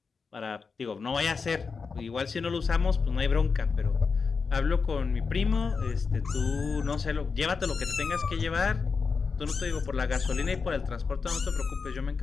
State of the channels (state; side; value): quieter; right; 5.1 dB